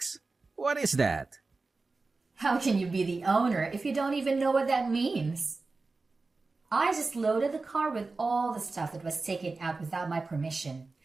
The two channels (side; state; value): left; quieter; 3.8 dB